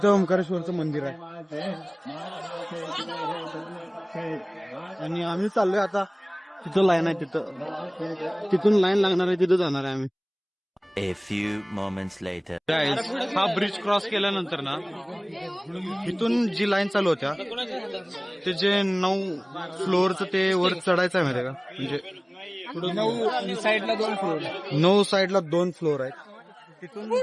ओंकारेश्वरचं मंदिर आहे. आणि आम्ही चाललोय आता. तिथं लाईन आहे. तिथून लाईन लागणार आहे. तिथं जाणार आहे आम्ही. A few moments later. Guys, हा ब्रिज क्रॉस केल्यानंतर ना इथून जी लाईन चालू होत्या ते जे 9 फ्लोअरचं ते वर चढायचं आहे माहिती का? म्हणजे 9 साईडला 2 फ्लोर. 9 साईडला 2 फ्लोअर आहेत. तिथून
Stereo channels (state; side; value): identical; both; correlation 1.00